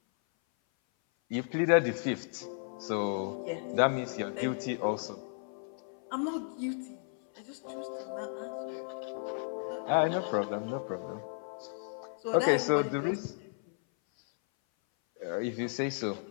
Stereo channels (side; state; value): right; silent; 55 dB below the other